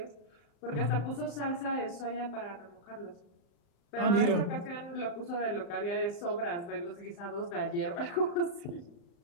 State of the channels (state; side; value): late; right; 35 ms